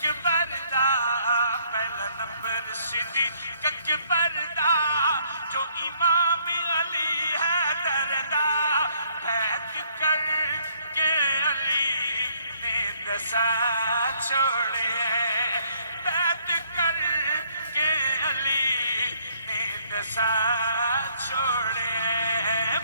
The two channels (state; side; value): inverted; both; correlation -0.66